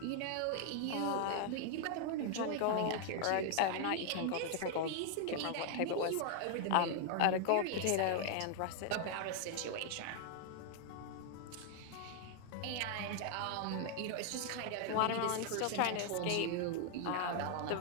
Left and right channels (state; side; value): different; both; correlation 0.00